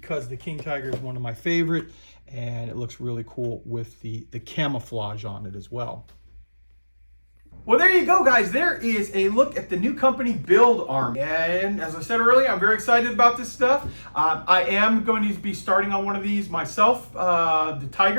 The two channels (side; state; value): both; inverted; correlation -1.00